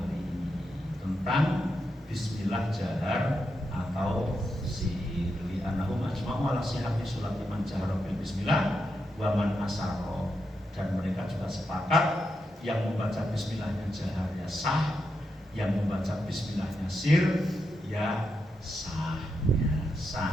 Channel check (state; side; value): normal; both; correlation 0.85